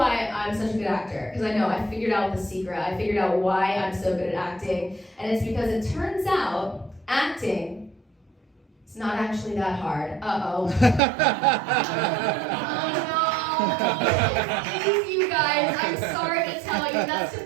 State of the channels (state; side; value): drops out; left; at 11.0 s